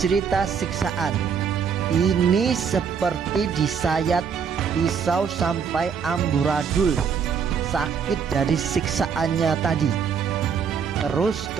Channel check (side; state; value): left; quieter; 6.7 dB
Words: siksaan. Ini seperti disayat pisau sampai amburadul, sakit dari siksaannya tadi. Terus